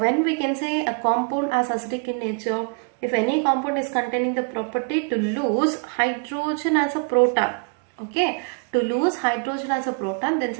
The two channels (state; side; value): quieter; left; 37.5 dB